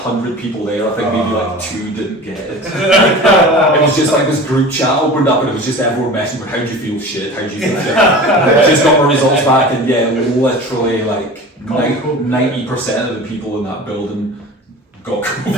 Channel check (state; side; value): normal; both; correlation 0.37